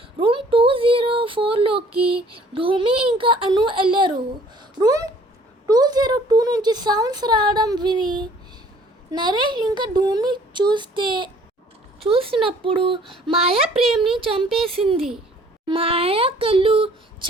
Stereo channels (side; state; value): both; normal; correlation 0.56